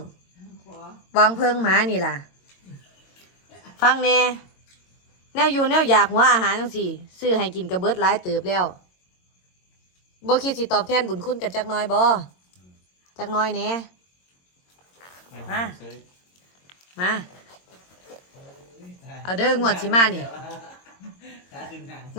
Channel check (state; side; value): late; right; 22 ms